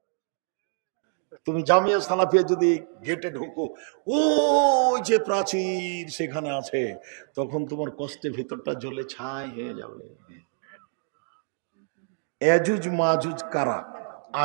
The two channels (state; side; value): silent; left; 59 dB below the other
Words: তুমি জামিয়া সালাফিয়া যদি গেটে ঢুকো, ও যে প্রাচীর সেখানে আছে, তখন তোমার কষ্টে ভিতরটা জ্বলে ছাই হয়ে যাবে। এজুজ মাজুজ কারা